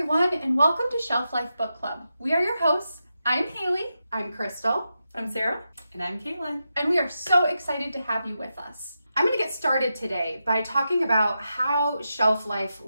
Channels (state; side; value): inverted; both; correlation -0.88